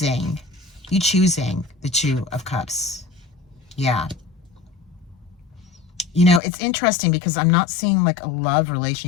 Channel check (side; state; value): right; drops out; at 6.4 s